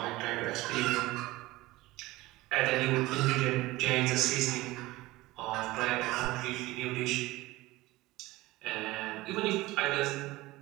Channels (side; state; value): left; quieter; 19.2 dB